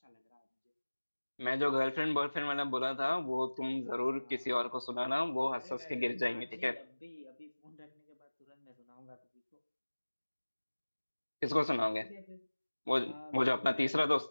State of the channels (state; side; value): inverted; both; correlation -1.00